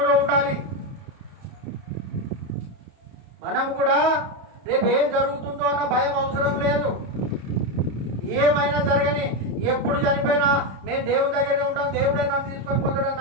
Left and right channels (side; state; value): left; late; 30 ms